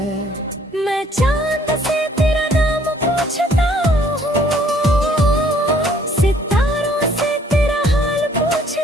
मैं चांद से तेरा नाम पूछता हूँ, सितारों से तेरा हाल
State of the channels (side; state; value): both; normal; correlation 0.61